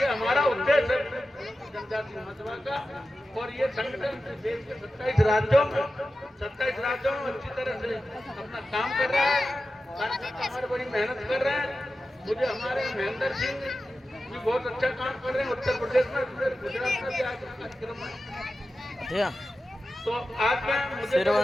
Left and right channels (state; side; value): normal; both; correlation 0.93